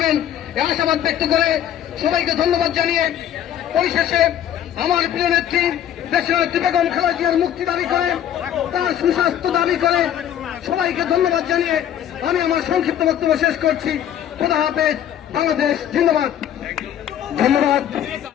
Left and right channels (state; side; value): quieter; right; 10.6 dB